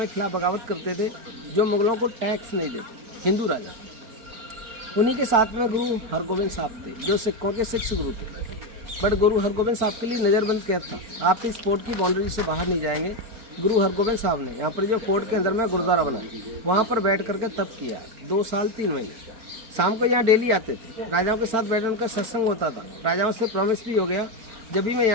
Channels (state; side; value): late; left; 4.5 ms